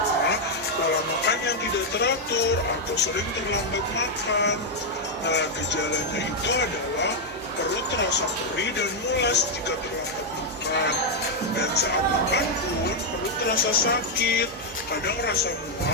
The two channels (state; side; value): normal; both; correlation 0.00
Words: pola makan yang tidak teratur atau sering terlambat makan. Nah, gejalanya itu adalah perut terasa perih dan mulas jika terlambat makan. Dan saat makan pun perut terasa sakit, kadang rasa